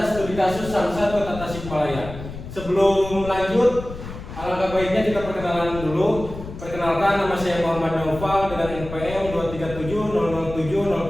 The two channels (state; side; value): noise; left; rumble, 11 dB below the sound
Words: studi kasus Samsat Kota Tasikmalaya. Sebelum lanjut, alangkah baiknya kita perkenalan dulu. Perkenalkan, nama saya Muhammad Naufal dengan NPM